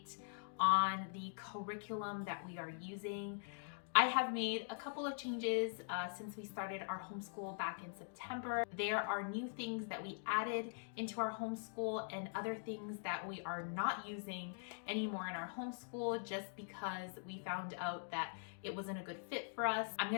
on the curriculum that we are using. I have made a couple of changes since we started our homeschool back in September. There are new things that we added into our homeschool and other things that we are not using anymore in our homeschool just because we found out that it wasn't a good fit for us. I'm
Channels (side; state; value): right; silent; digital silence